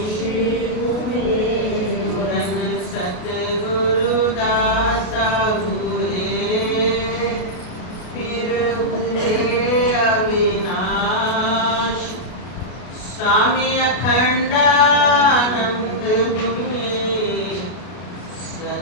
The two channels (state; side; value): late; right; 32 ms